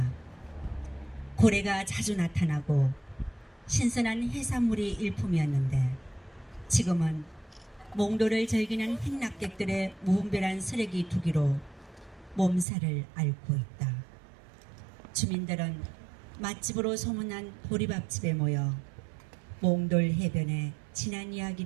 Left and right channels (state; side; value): drops out; left; at 12.7 s